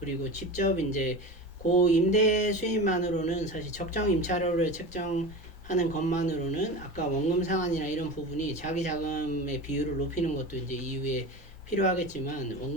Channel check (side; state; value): both; normal; correlation 0.29